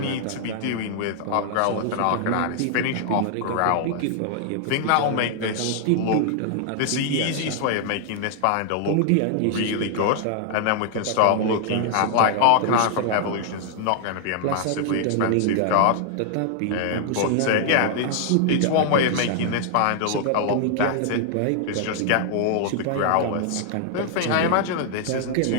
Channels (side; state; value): both; different; correlation 0.00